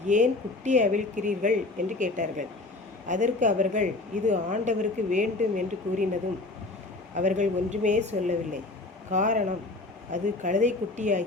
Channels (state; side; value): quieter; right; 3.1 dB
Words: ஏன் குட்டியை அவிழ்க்கிறீர்கள் என்று கேட்டார்கள். அதற்கு அவர்கள், இது ஆண்டவருக்கு வேண்டும் என்று கூறினதும் அவர்கள் ஒன்றுமே சொல்லவில்லை. காரணம், அது கழுதை